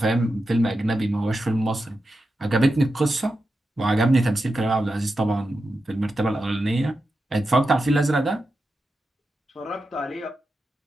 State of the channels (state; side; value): normal; both; correlation 0.90